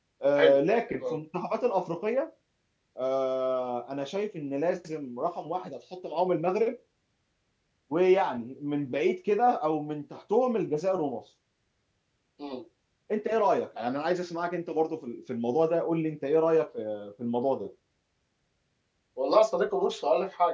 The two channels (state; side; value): identical; both; correlation 1.00